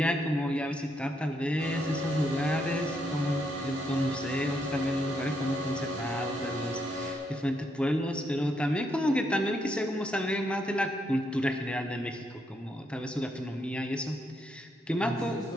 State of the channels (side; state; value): both; normal; correlation 0.77